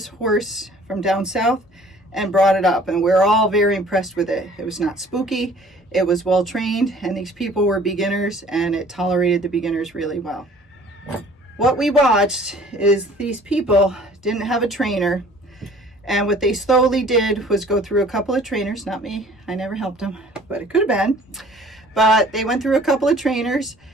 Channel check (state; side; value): normal; both; correlation 0.52